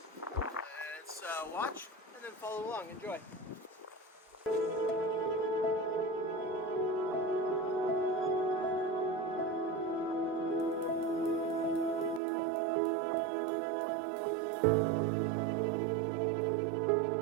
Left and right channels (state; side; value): drops out; left; at 12.2 s